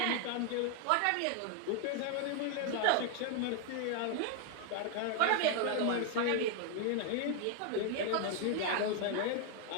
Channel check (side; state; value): both; different; correlation 0.00